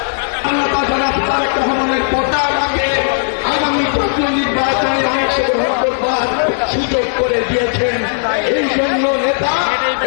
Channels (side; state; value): right; silent; digital silence